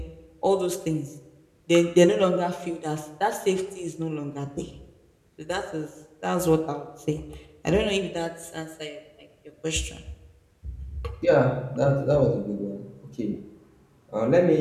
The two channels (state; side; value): identical; both; correlation 1.00